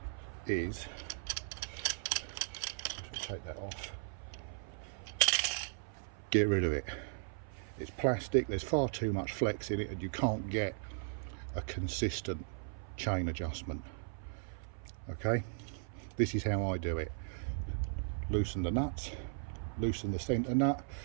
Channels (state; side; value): silent; left; 53 dB below the other